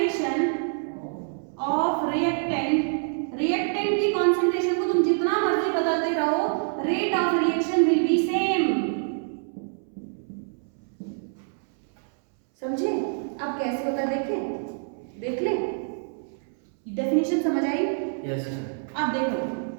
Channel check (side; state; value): left; silent; 61 dB below the other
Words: of reactant की concentration को तुम जितना मर्जी बदलते रहो, rate of reaction will be same। समझे? अब कैसे होता है देख ले, डेफिनेशन समझ आई? Yes sir. अब देखो